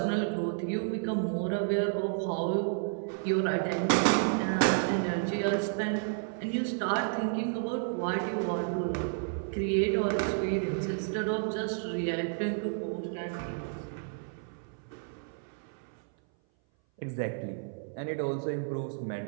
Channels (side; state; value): left; silent; 57 dB below the other